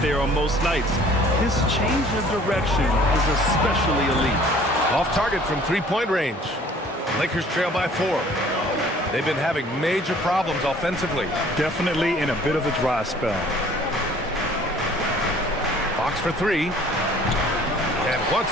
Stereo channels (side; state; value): both; normal; correlation 0.53